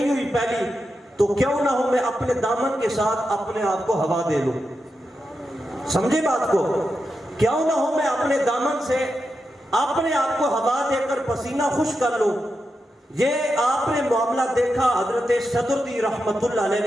ہوئی پہلی، تو کیوں نہ ہو میں اپنے دامن کے ساتھ اپنے آپ کو ہوا دے لوں۔ سمجھے بات کو؟ کیوں نہ ہو میں اپنے دامن سے اپنے آپ کو ہوا دے کر پسینہ خشک کر لوں۔ یہ آپ نے معاملہ دیکھا حضرت صدر الدین رحمۃ اللہ علیہ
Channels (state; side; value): normal; both; correlation 0.88